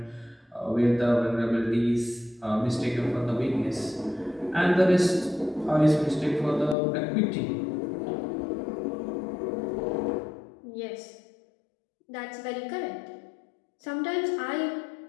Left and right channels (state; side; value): drops out; right; at 6.8 s